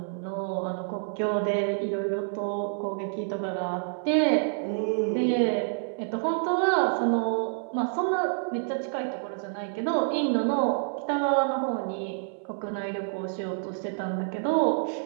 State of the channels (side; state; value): left; silent; 59 dB below the other